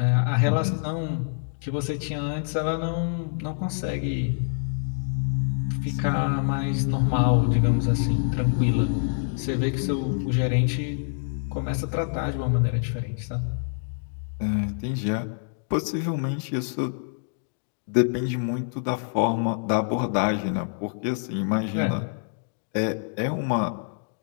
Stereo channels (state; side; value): silent; right; digital silence